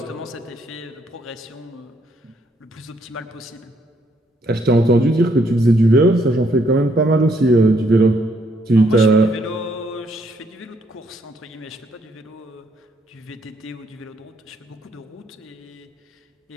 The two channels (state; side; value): normal; both; correlation 0.71